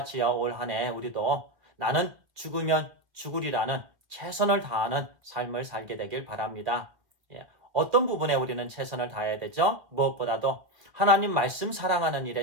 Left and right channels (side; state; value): left; late; 2.0 ms